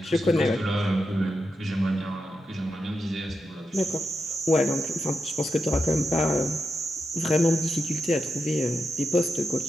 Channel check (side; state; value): both; normal; correlation 0.87